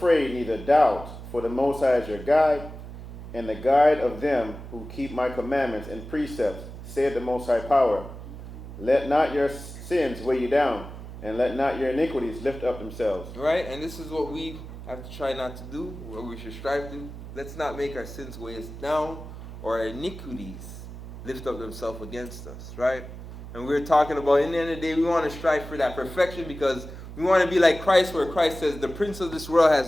neither doubt, for the Most High is your guide, and the guide of them who keep my commandments and precepts, said the Most High Power. Let not your sins weigh you down, and let not your iniquities lift up themselves. Right? And this is what we have to try not to do, what we should strive to. Let's not make our sins weigh us down, or our iniquities lift up themselves against us, right? And we're talking about, in the end of the day, we want to strive for that perfection because we want to be like Christ, where Christ says, the prince of this world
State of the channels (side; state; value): right; noise; hum, 12 dB below the sound